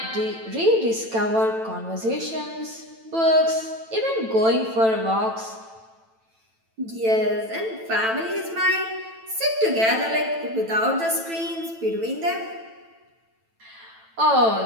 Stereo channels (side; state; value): left; late; 9.0 ms